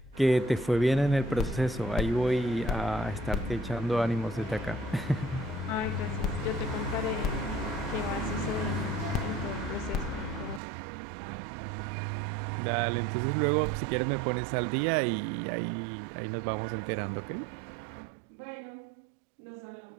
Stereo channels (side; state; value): left; drops out; at 10.6 s